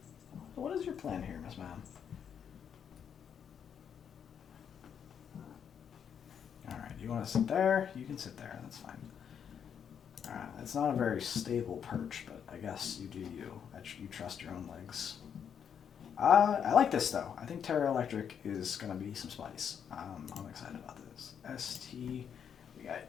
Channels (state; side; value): quieter; right; 7.9 dB